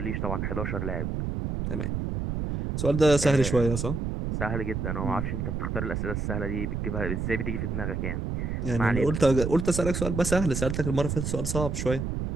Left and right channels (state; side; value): noise; right; rumble, 2 dB below the sound